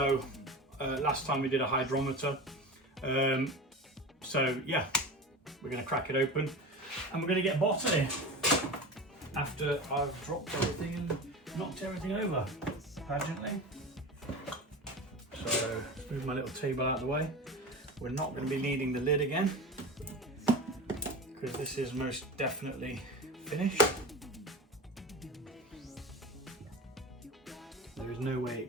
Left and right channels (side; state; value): both; normal; correlation 0.29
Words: last time we did a hydrometer. So yeah, we're going to crack it open and we're going to get bottling after I've dropped everything and knocked everything over pageantly. So move my little table out of the way. We're not going to be needing the lid again because this is most definitely finished. There is no way it